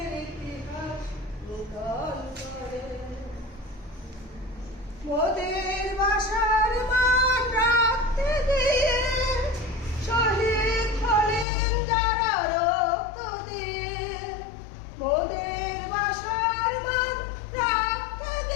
ইতিহাস নূতন করে। মোদের বাসার মান রাখতে গিয়ে শহীদ হলেন যারা রক্ত দিয়ে। মোদের বাসার মান রাখতে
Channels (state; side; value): drops out; right; at 11.5 s